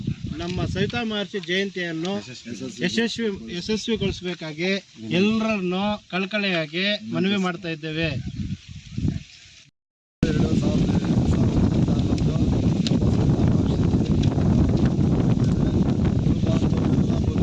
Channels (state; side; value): identical; both; correlation 1.00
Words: ನಮ್ಮ ಸವಿತಾ ಮಹರ್ಷಿ ಜಯಂತಿಯನ್ನು ಯಶಸ್ವಿಗೊಳಿಸಬೇಕಾಗಿ ಎಲ್ಲರನ್ನು ಕಳಕಳಿಯಾಗಿ ಮನವಿ ಮಾಡ್ತಾ ಇದ್ದೇವೆ.